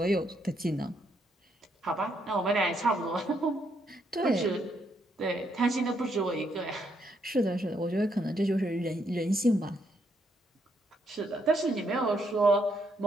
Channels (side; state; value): both; normal; correlation 0.75